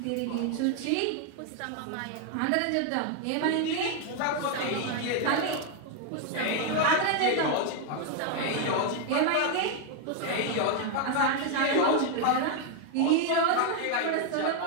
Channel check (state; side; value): different; both; correlation 0.01